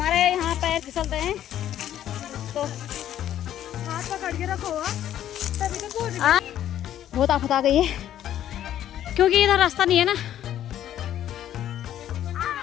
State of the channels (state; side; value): quieter; right; 11.4 dB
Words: यहाँ पैर फिसलते हैं तो हाथ पकड़ के रखो। बहुत आफत आ गई है क्योंकि इधर रास्ता नहीं है ना।